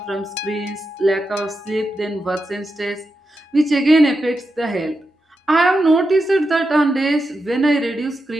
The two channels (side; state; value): both; normal; correlation 0.88